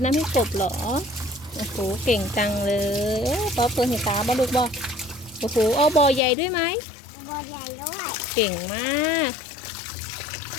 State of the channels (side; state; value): right; drops out; at 6.2 s